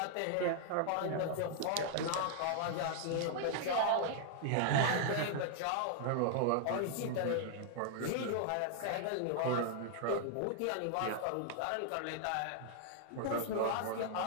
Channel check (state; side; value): different; both; correlation 0.00